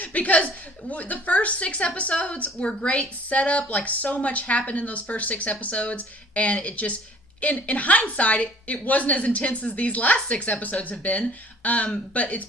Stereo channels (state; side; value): normal; both; correlation 0.52